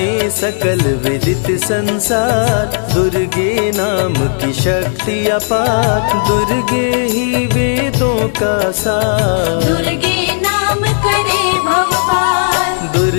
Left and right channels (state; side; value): silent; right; digital silence